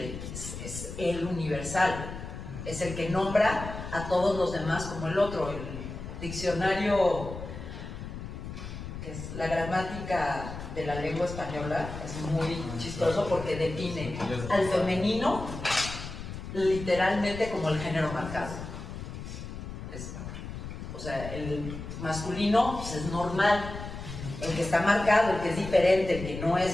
es el universal, es el que nombra a todos los demás como el otro. El diccionario, que es la gramática de la lengua española, es muy chistoso porque define al femenino literalmente como el género marcado. O sea, el masculino pues, es normal, el que está marcado, el que es diferente, el que no es,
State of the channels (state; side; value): noise; left; rumble, 9 dB below the sound